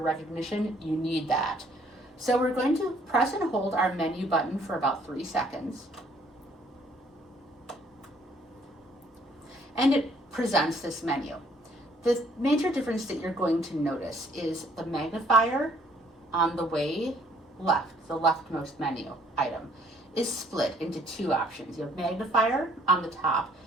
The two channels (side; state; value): both; normal; correlation 0.62